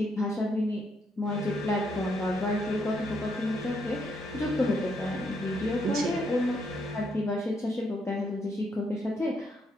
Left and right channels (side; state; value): both; normal; correlation 0.75